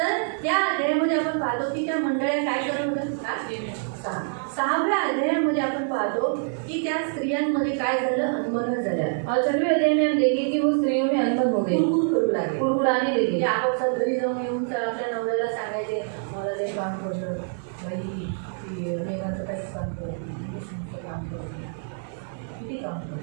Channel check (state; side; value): silent; left; 61 dB below the other